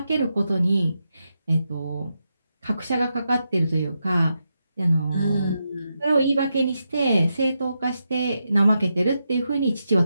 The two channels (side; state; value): both; inverted; correlation -0.86